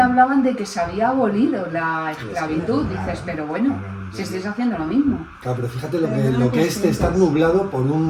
de que se había abolido la esclavitud. Dices, pero bueno, si estáis haciendo lo mismo. Claro, pero fíjate Pero no lo que es conscientes. estar nublado por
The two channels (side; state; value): both; identical; correlation 1.00